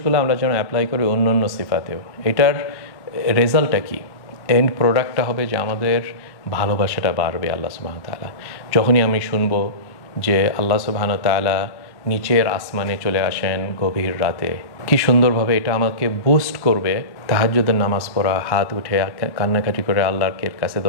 আমরা যেন অ্যাপ্লাই করি অন্য অন্য সিফাতেও। এটার রেজাল্টটা কি? এন্ড প্রোডাক্টটা হবে যে আমাদের ভালোবাসাটা বাড়বে আল্লাহ সুবহানাহু ওয়া তাআলা। যখনই আমি শুনবো যে আল্লাহ সুবহানাহু ওয়া তাআলা নিচের আসমানে চলে আসেন গভীর রাতে, কি সুন্দরভাবে এটা আমাকে বুস্ট করবে। তাহাজ্জুদের নামাজ পড়া, হাত উঠে কান্নাকাটি করে আল্লাহর কাছে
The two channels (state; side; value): late; right; 1.1 ms